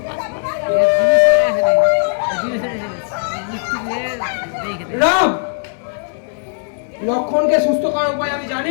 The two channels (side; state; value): right; silent; digital silence